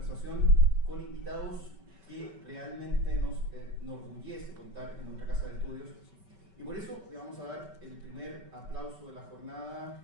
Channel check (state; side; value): late; left; 5.2 ms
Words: con invitados que realmente nos enorgullece contar en nuestra casa de estudios. Y por eso le vamos a dar el primer aplauso de la jornada